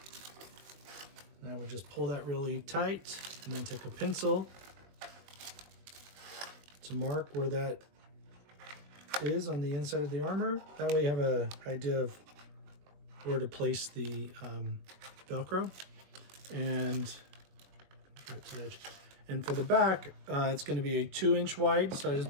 And I would just pull that really tight, and then take a pencil to mark where that is on the inside of the armor. That way you have an idea of where to place the Velcro. And for the back, it's going to be a 2 inch wide. So I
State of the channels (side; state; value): left; late; 21 ms